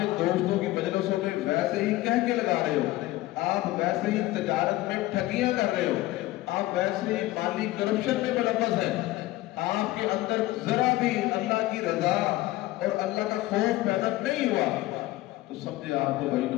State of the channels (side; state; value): right; quieter; 17.5 dB